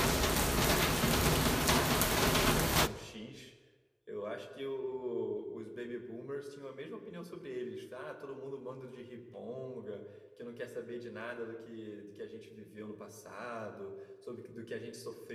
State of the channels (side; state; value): both; identical; correlation 1.00